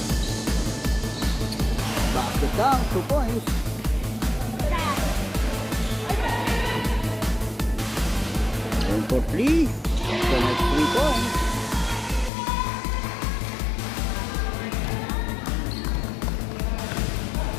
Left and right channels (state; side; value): drops out; right; at 12.3 s